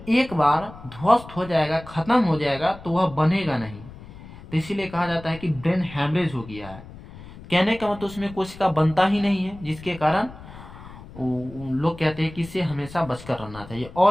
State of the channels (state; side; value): noise; left; rumble, 17 dB below the sound